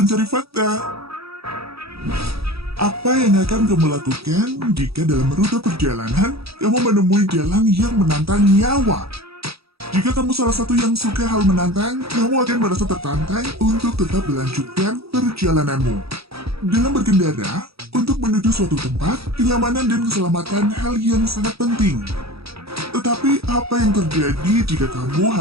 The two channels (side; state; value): left; late; 0.77 ms